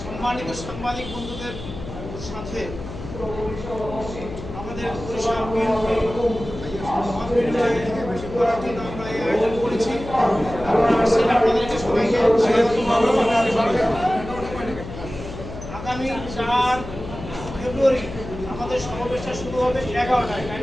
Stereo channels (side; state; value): left; noise; hum, 11 dB below the sound